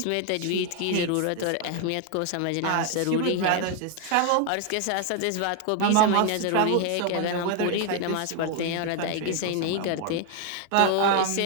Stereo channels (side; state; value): both; different; correlation 0.01